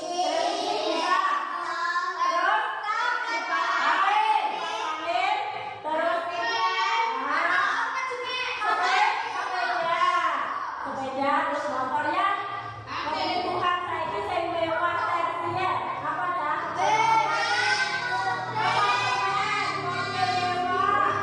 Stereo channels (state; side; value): identical; both; correlation 1.00